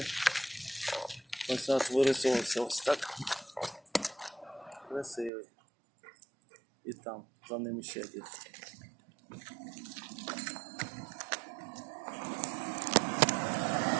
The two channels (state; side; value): drops out; left; at 5.3 s